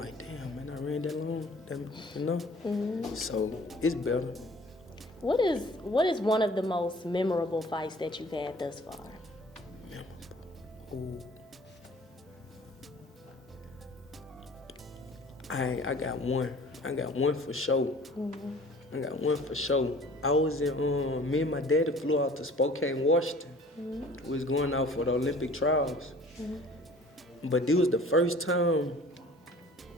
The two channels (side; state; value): both; normal; correlation 0.49